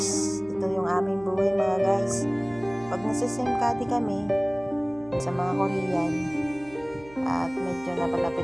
ito yung aming buhay mga guys. Pag nasa-SIM-Cady kami sa mga Korean at medyo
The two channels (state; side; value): noise; right; hum, 22 dB below the sound